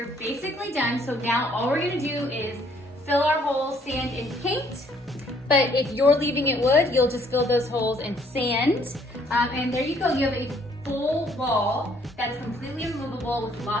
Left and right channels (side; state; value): both; normal; correlation 0.64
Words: basically done. So now all we're gonna do is fill our holes, sand, and paint. But if you're leaving it wood, you'll just fill those holes in sand. And there you go, you have a full wall that's completely removable with